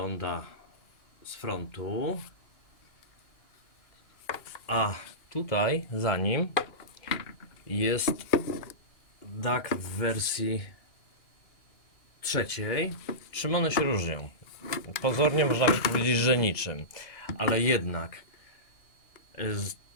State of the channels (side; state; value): right; late; 2.2 ms